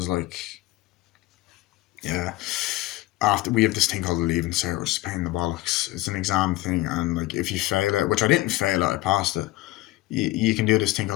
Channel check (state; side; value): quieter; right; 18.1 dB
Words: like, yeah. After we have this thing called a leaving cert, which is a pain in the bollocks. It's an exam thing, and like if you fail it, which I didn't fail it, I passed it. You can do this thing